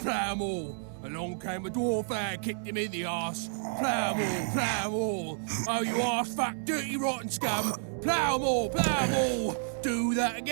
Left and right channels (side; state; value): left; silent; digital silence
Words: plough 'em all. Along came a dwarf and kicked him in the arse. Plough 'em all, plough 'em all. Oh, you arse fat, dirty, rotten scum. Plough 'em all, plough 'em all. Do that